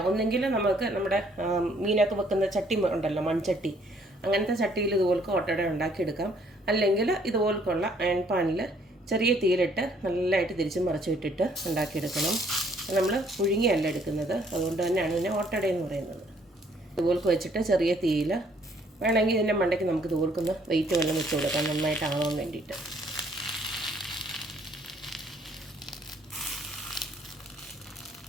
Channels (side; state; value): both; normal; correlation 0.64